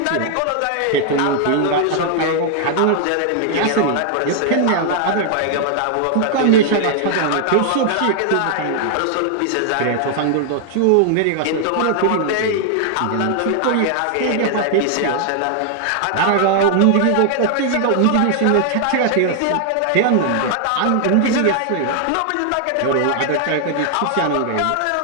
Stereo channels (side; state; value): both; different; correlation 0.00